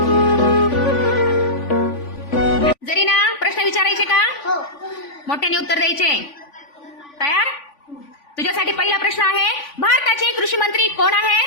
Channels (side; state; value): right; late; 3.5 ms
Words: जरीना, प्रश्न विचारायचे का? हो. मोठ्याने उत्तर द्यायचे. तयार? तुझ्यासाठी पहिला प्रश्न आहे, भारताचे कृषी मंत्री कोण